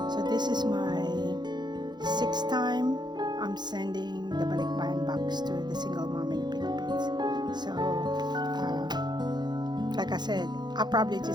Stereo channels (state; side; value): late; left; 0.21 ms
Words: So this is my 6th time I'm sending the Balik Bayan box to the single mom in the Philippines. So like I said, I'm probably